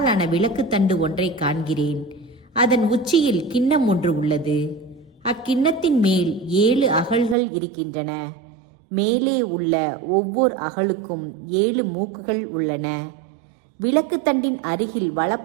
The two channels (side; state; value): left; drops out; at 7.4 s